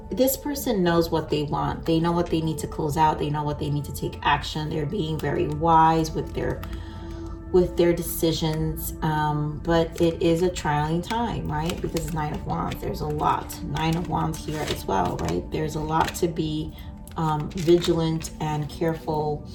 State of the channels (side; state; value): both; identical; correlation 1.00